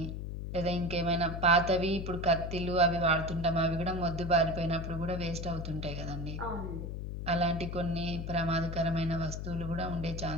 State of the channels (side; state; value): left; noise; hum, 5 dB below the sound